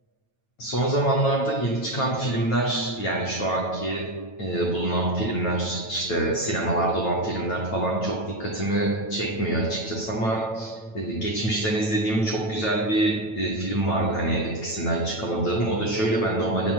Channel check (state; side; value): late; right; 9.1 ms